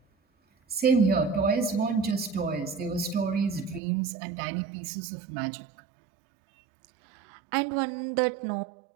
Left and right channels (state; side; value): drops out; left; at 3.8 s